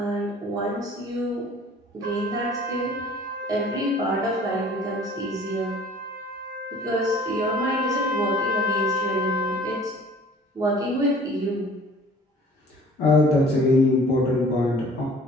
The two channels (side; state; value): both; normal; correlation 0.50